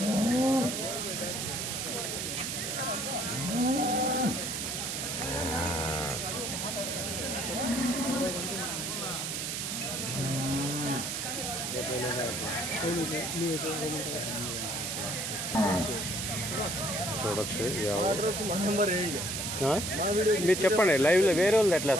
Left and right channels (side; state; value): right; noise; hiss, 3 dB below the sound